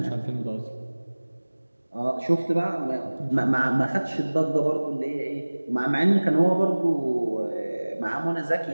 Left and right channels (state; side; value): inverted; both; correlation -1.00